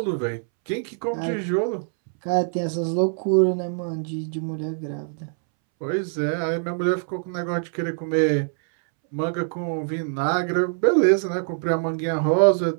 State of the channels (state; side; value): silent; left; 63 dB below the other